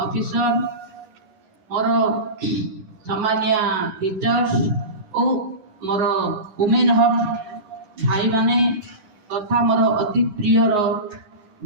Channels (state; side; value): late; left; 11 ms